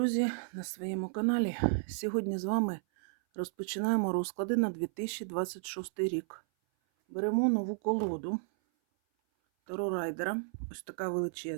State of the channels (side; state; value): left; silent; 56 dB below the other